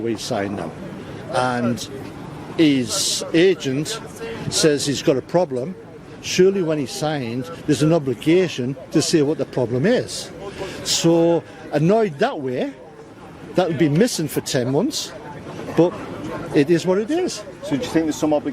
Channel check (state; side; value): identical; both; correlation 1.00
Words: signed him, and his agent says he's got a problem. Surely when he signed, there's an obligation to say what the problem is. So annoyed that way, that would be missing for 10 months, but it is what it is. So do you think there's some